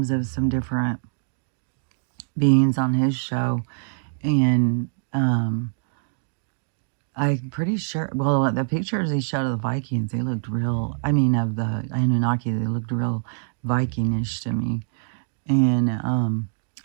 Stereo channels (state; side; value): silent; left; digital silence